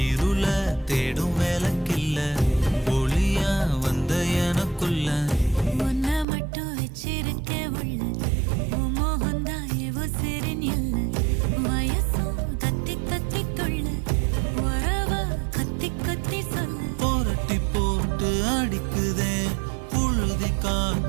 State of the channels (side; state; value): left; drops out; at 6.2 s